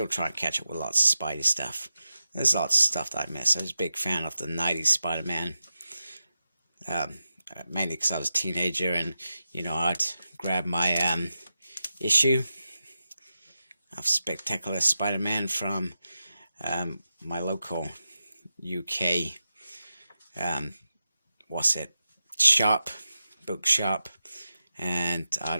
trying to catch up with lots of Spidey stuff. There's lots of stuff that I miss. I was a big fan of the 90s Spider-Man. Mainly because I was a teenager and, you know, I'd grab my issue of Spectacular Spider-Man from my local UK, bookshop, and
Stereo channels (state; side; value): inverted; both; correlation -0.90